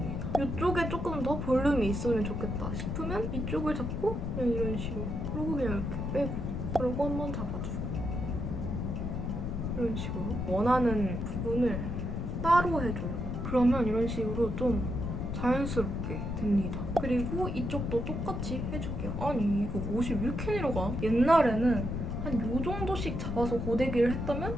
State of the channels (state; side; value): noise; left; rumble, 3 dB below the sound